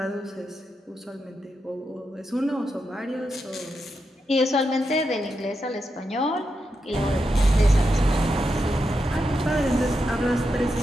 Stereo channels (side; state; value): both; normal; correlation 0.86